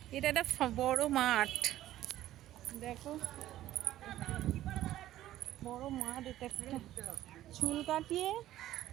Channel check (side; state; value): left; quieter; 13.8 dB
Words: এটা একটা বড় মাঠ, দেখো বড় মাঠ। এটা একটা চুল কাটিয়ে